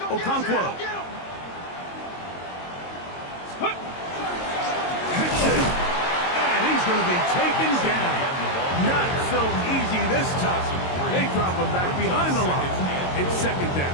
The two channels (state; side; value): late; right; 22 ms